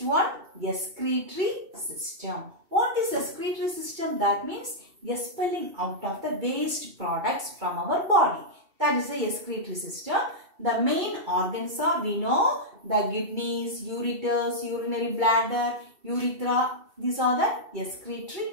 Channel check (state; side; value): late; left; 2.7 ms